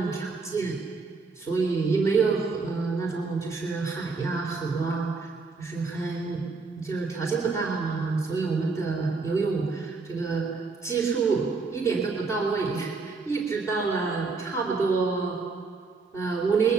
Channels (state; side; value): quieter; left; 4.3 dB